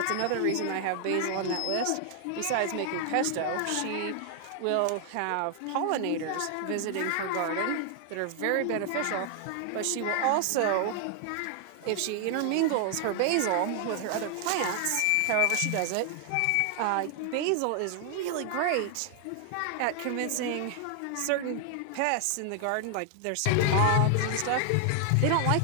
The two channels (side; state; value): both; different; correlation 0.00